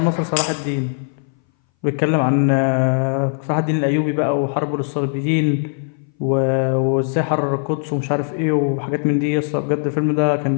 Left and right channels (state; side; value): silent; right; 61 dB below the other